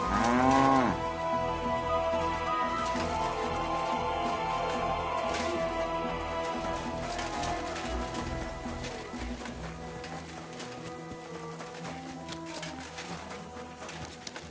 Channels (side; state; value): both; identical; correlation 1.00